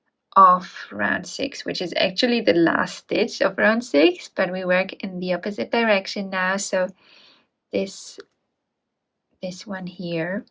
of round 6, which is actually the last stitch of round 6, but we work in the opposite direction now. So this one here,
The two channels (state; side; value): identical; both; correlation 1.00